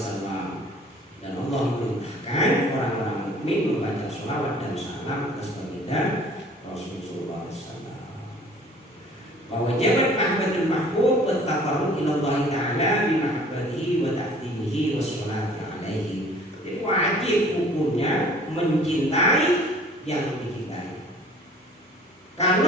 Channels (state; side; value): normal; both; correlation 0.51